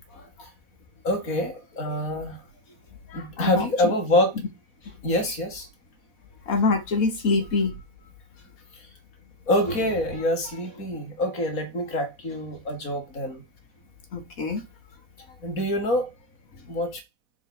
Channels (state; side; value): late; right; 4.1 ms